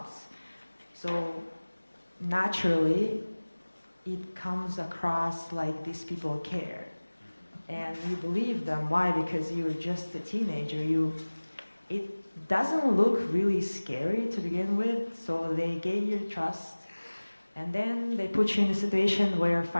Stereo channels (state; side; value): inverted; both; correlation -1.00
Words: So naturally, it comes across like these people care. And you believe them. Why? Because you're just a teenager. It doesn't look really scary to begin with, so they gain your trust. And then they put you in a situation where